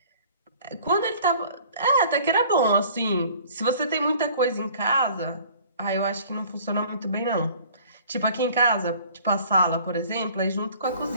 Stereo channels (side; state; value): both; inverted; correlation -0.51